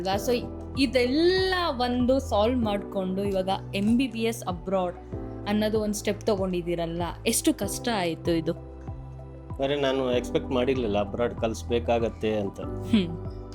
ಸೊ ಇದೆಲ್ಲ ಒಂದು ಸಾಲ್ವ್ ಮಾಡಿಕೊಂಡು ಇವಾಗ MBBS ಅಬ್ರಾಡ್ ಅನ್ನೋದು ಒಂದು ಸ್ಟೆಪ್ ತೊಗೊಂಡಿದ್ದೀರಲ್ಲ, ಎಷ್ಟು ಕಷ್ಟ ಆಯಿತು ಇದು? ಅಂದರೆ ನಾನು ಎಕ್ಸ್ಪೆಕ್ಟ್ ಮಾಡಿರಲಿಲ್ಲ ಅಬ್ರಾಡ್ ಕಲಿಸ್ಬೇಕಾಗತ್ತೆ ಅಂತ.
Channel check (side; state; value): both; identical; correlation 1.00